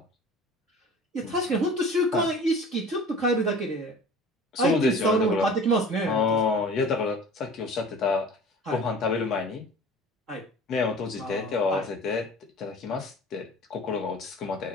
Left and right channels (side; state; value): both; normal; correlation 0.42